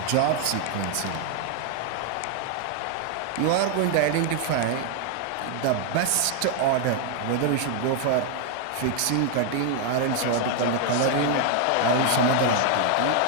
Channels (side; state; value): both; different; correlation 0.00